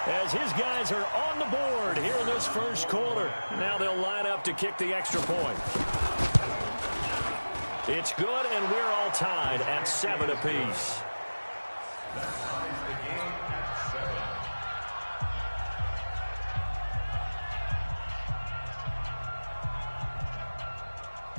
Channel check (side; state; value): both; inverted; correlation -1.00